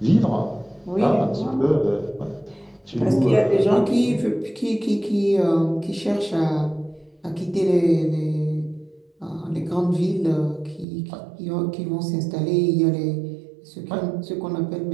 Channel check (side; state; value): left; drops out; at 10.9 s